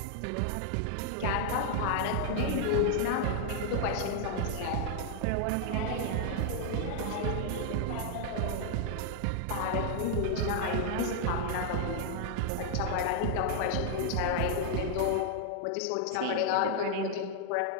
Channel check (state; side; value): different; both; correlation 0.00